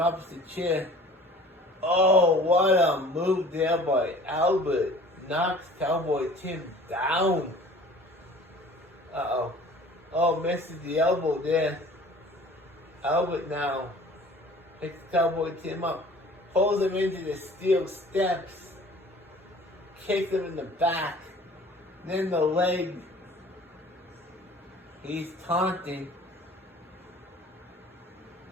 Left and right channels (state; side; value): normal; both; correlation 0.48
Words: the chair. What a move there by Albert. Knocks Cowboy Tim down. Misses the elbow there. Albert now picks Cowboy Tim up. Pulls him into the steel steps. Kicks him in the back. Then the leg. He's taunting.